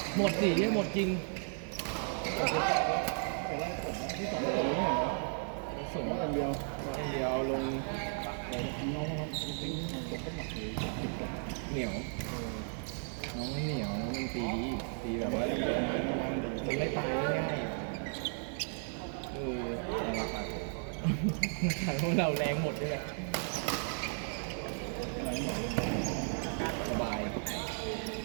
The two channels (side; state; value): left; silent; 55 dB below the other